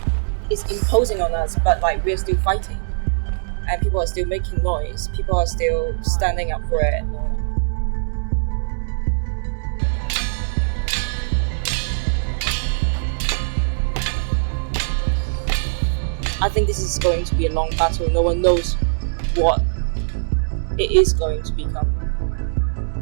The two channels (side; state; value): left; silent; digital silence